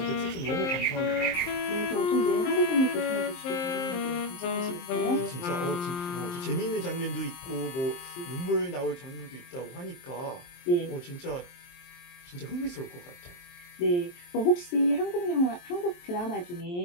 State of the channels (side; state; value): right; late; 23 ms